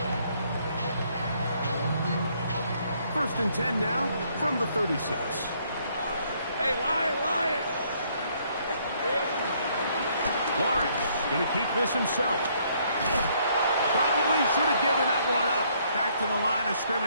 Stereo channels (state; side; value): inverted; both; correlation -0.67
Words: 1st and 10 now from the 36. Hey, Lion! Lawrence going to keep this himself. Probably should have given that one up. Back to the line of